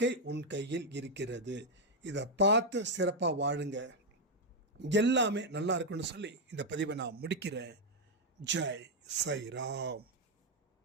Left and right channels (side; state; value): both; normal; correlation 0.01